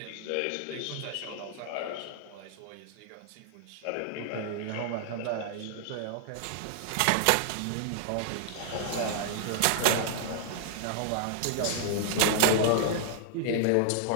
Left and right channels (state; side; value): different; both; correlation -0.01